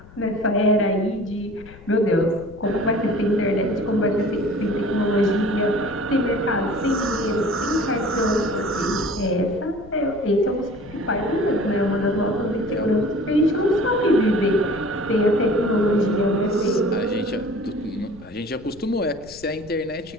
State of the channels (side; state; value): left; noise; rumble, 21 dB below the sound